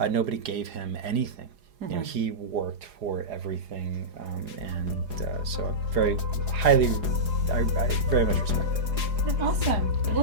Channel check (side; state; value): left; late; 4.8 ms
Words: Nobody gave him anything. He worked for everything, and so very highly, I very much respect that. Awesome.